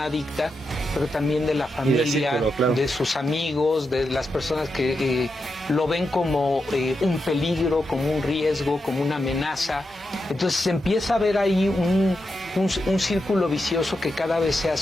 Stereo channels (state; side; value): normal; both; correlation 0.87